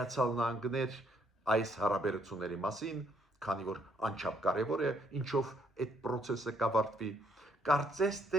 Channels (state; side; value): normal; both; correlation 0.69